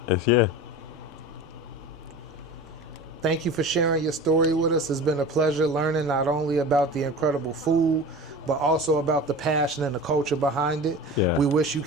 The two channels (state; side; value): normal; both; correlation 0.35